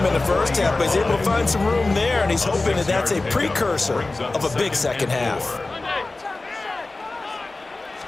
in the first half, but he's able to find some room there, and he's hoping that that's a precursor of a big second half.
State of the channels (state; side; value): quieter; right; 3.2 dB